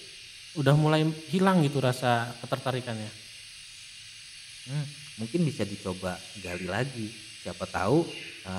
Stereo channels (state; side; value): identical; both; correlation 1.00